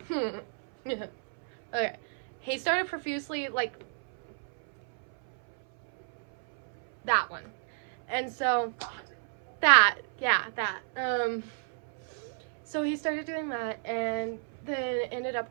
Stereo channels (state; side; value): silent; left; 57 dB below the other